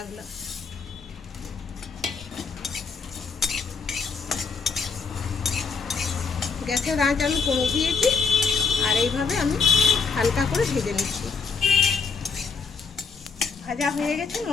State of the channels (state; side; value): quieter; right; 5.3 dB